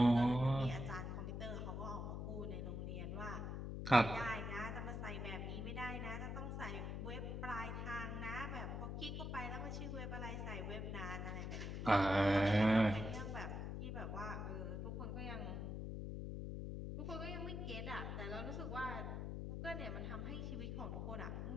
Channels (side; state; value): left; noise; hum, 4 dB below the sound